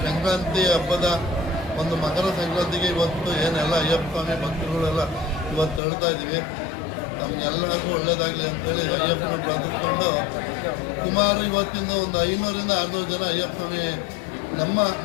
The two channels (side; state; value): right; drops out; at 5.8 s